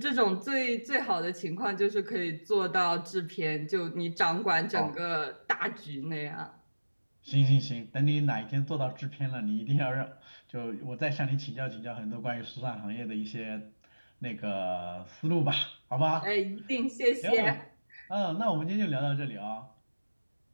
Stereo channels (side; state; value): both; inverted; correlation -1.00